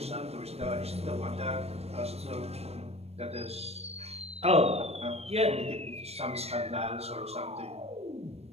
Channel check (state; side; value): late; left; 0.30 ms